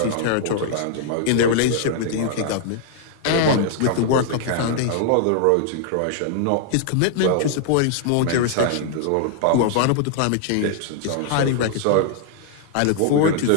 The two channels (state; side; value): different; both; correlation 0.00